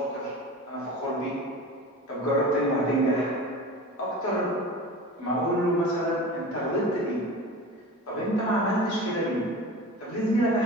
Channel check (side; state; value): both; normal; correlation 0.34